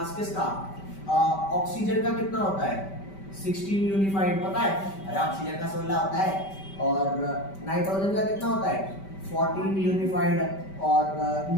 किसका? ऑक्सीजन का कितना होता है? 16 यूनिफाइड, पता है? अरे ऑक्सीजन का 16 होता है। और नाइट्रोजन का कितना होता है? 14 यूनिफाइड। और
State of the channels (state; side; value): late; right; 5.2 ms